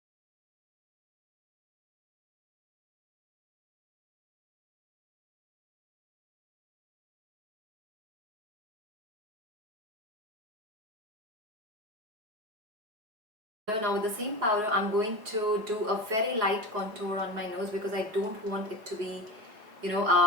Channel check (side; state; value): left; late; 4.7 ms